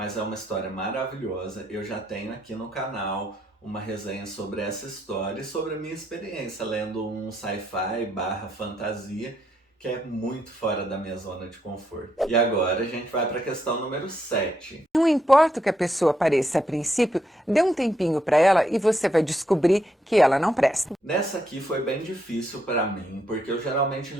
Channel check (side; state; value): both; normal; correlation 0.77